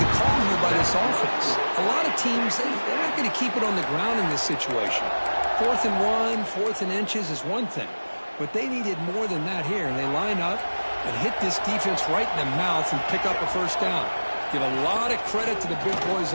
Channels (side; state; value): both; inverted; correlation -1.00